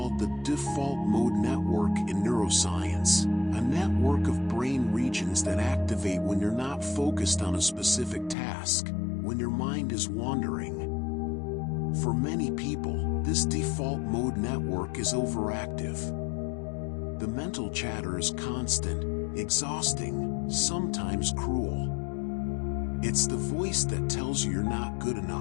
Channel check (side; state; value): right; drops out; at 8.3 s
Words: the default mode network in neuroscience, a network of brain regions that activate when you're not focused on a specific task, when your mind is wandering. For many people, this default mode network is overactive. The mental chatter is constant, exhausting, sometimes cruel. It's the voice that tells you you're not good